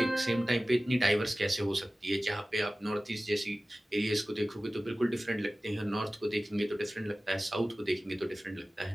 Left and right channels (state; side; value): normal; both; correlation 0.97